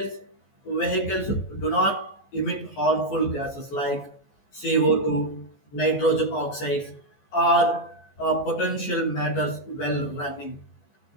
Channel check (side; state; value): right; late; 14 ms